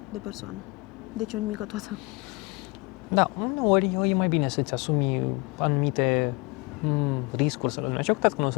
de persoană. Deci o nimică toată. Da, uneori e mai bine să-ți asumi anumite riscuri, să le numim așa, cu toate că nu o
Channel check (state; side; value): quieter; right; 26.7 dB